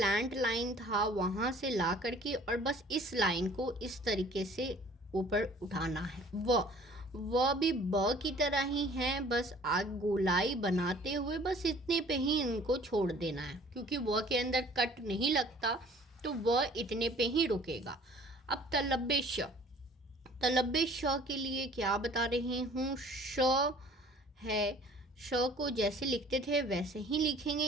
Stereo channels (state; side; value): normal; both; correlation 0.52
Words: लाइन था वहाँ से ला करके और बस इस लाइन को इस तरीके से ऊपर उठाना है। व भी ब की तरह ही है, बस आग गोलाई बनाते हुए बस इतने पे ही इनको छोड़ देना है, क्योंकि व के अंदर कट नहीं लगता तो व इतने पे ही रुकेगा। अब तलब्बे श के लिए क्या बता रही हूँ, श है, श को जैसे लिखते थे वैसे ही लिखेंगे,